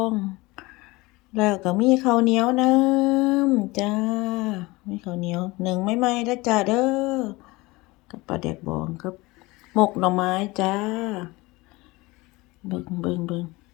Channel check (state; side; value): quieter; right; 22.2 dB